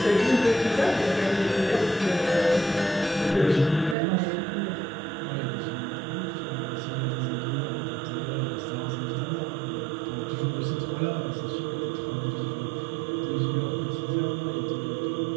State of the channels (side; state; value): left; drops out; at 4.0 s